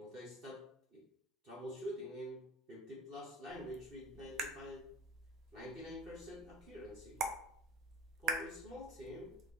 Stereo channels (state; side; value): normal; both; correlation 0.42